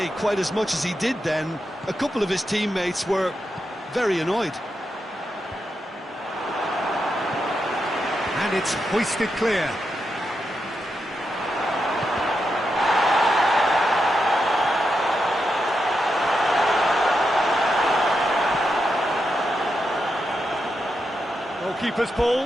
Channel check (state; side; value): normal; both; correlation 0.86